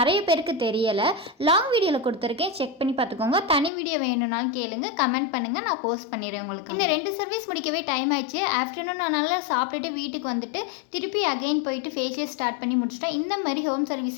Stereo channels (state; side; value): drops out; right; at 3.7 s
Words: பேருக்கு தெரியலை. லாங் வீடியோவில் கொடுத்துருக்கேன், செக் பண்ணி பார்த்துக்கோங்க. தனி வீடியோ வேணும்னாலும் கேளுங்க, கமெண்ட் பண்ணுங்கள், நான் போஸ்ட் பண்ணிடுறேன் உங்களுக்கு. இந்த 2 சர்வீஸ் முடிக்கவே டைம் ஆயிடுச்சு. ஆஃப்டர்நூன் நான் நல்லா சாப்பிட்டுட்டு வீட்டுக்கு வந்துட்டு திருப்பி அகைன் போயிட்டு ஃபேஷியல் ஸ்டார்ட் பண்ணி முடிச்சிட்டேன். இந்த மாதிரி ஹோம்